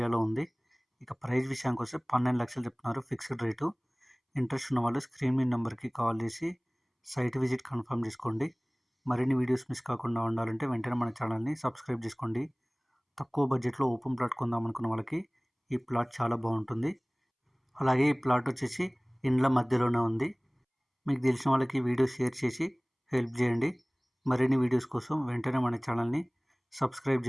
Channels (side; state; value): both; identical; correlation 1.00